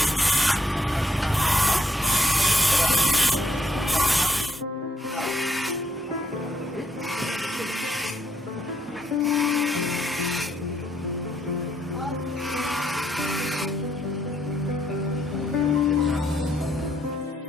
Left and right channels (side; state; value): both; normal; correlation 0.73